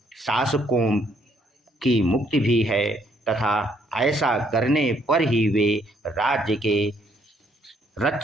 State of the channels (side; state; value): both; normal; correlation 0.68